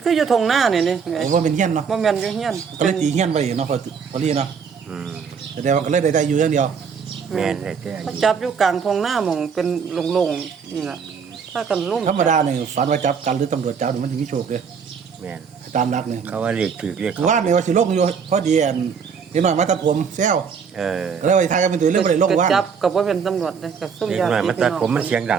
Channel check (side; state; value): left; quieter; 6.3 dB